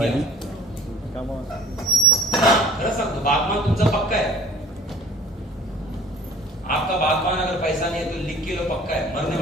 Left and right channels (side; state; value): both; normal; correlation 0.49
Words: खरं सांगतो, बागमान तुमचा पक्का है. आपका बागबान अगर पैसा नहीं है तो लिख के लो, पक्का है. मरने